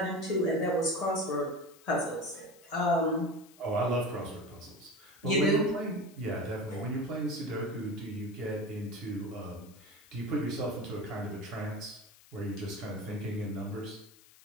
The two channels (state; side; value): noise; left; hiss, 24 dB below the sound